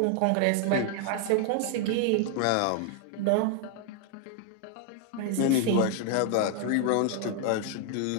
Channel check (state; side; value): different; both; correlation 0.00